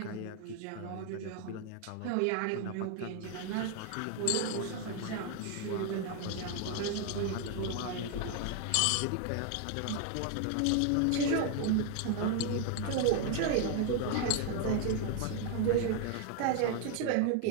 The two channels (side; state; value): both; different; correlation 0.01